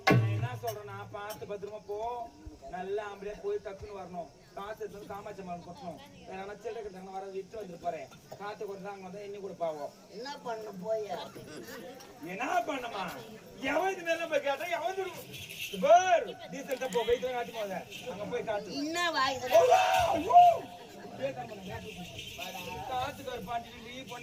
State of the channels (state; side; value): identical; both; correlation 1.00